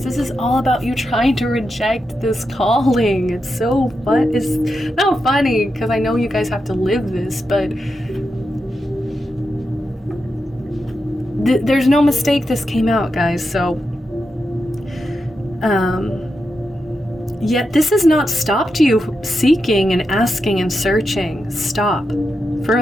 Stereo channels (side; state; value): both; normal; correlation 0.87